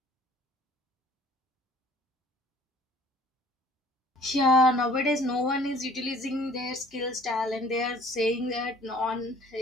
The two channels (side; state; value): both; normal; correlation 0.53